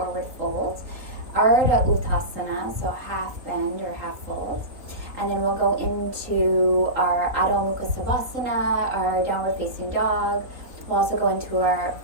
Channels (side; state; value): left; late; 3.6 ms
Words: fold. Ardha Uttanasana, so half bend or half fold. And then we'll go into our Adho Mukha, our downward facing dog. We'll also go into our